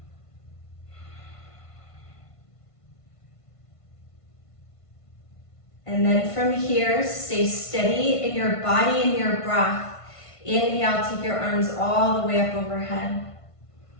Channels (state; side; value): late; right; 1.5 ms